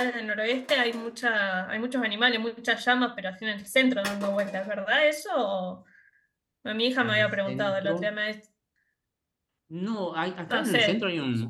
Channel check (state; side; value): identical; both; correlation 1.00